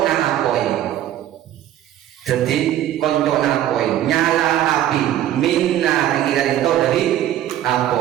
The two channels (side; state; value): left; quieter; 12.1 dB